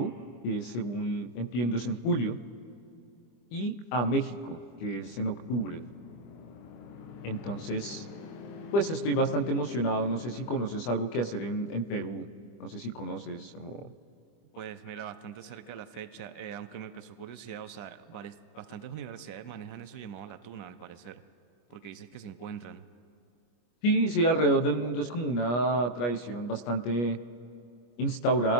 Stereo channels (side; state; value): right; late; 25 ms